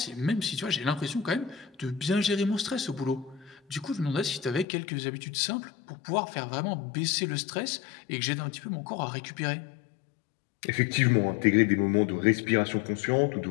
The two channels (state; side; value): drops out; right; at 4.7 s